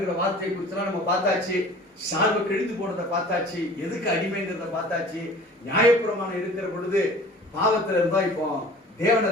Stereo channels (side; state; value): both; normal; correlation 0.45